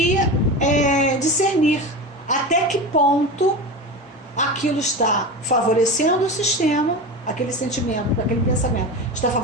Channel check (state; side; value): normal; both; correlation 0.26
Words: discernir até que ponto aquilo está favorecendo o sistema, aquele sentimento, aquele pensamento está